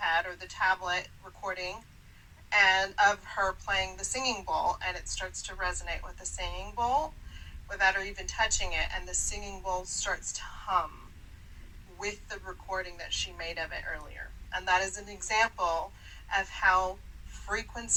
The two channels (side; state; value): both; identical; correlation 1.00